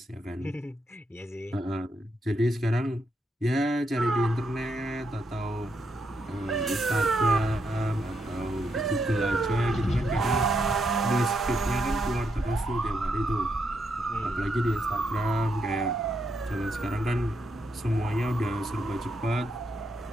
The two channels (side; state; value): both; normal; correlation 0.80